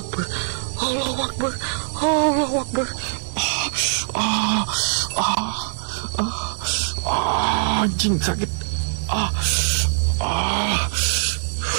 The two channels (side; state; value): left; silent; digital silence